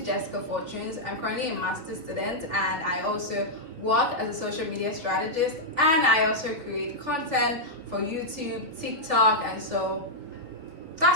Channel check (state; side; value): late; left; 3.3 ms